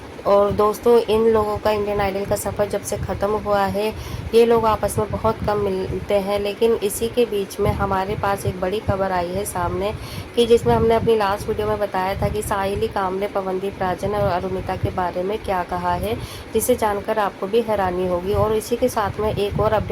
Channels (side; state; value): both; identical; correlation 1.00